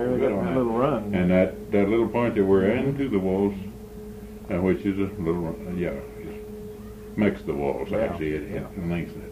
good on that little run. And that little point that we're into the waltz, which is a little, just makes the waltz, actually, it lengthens it.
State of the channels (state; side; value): identical; both; correlation 1.00